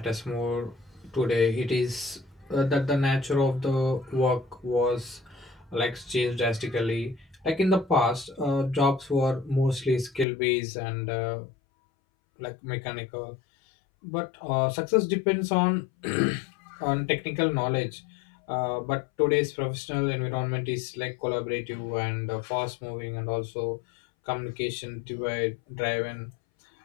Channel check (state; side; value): drops out; right; at 10.2 s